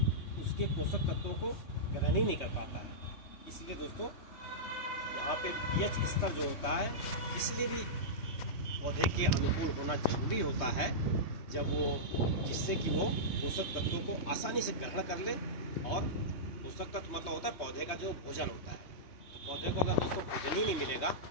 उसके पोषक तत्वों को ग्रहण ही नहीं कर पाता है। इसलिए दोस्तों यहाँ पे पीएच स्तर जो होता है, इसलिए भी पौधे के अनुकूल होना जरूरी होता है, जब वो जिससे कि वो पोषक तत्वों को आसानी से ग्रहण कर ले। और पोषक तत्व मतलब होता है पौधे का जो भोजन होता है। तो पौधे को अगर दोस्तों भोजन ही नहीं मिलेगा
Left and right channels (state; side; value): late; right; 3.2 ms